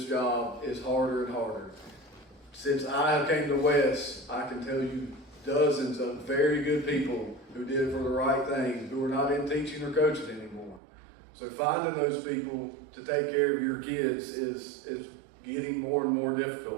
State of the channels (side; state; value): left; drops out; at 10.8 s